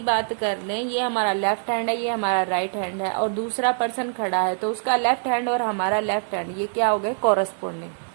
बात कर लें, ये हमारा लेफ्ट हैंड है, ये हमारा राइट हैंड है, और दूसरा पर्सन खड़ा है, तो उसका लेफ्ट हैंड और हमारा लेफ्ट हैंड ये क्या हो गए, कॉरस्पॉन्डिंग।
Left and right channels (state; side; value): silent; left; digital silence